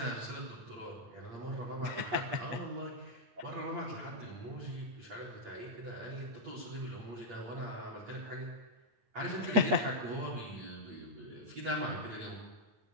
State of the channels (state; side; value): late; left; 8.4 ms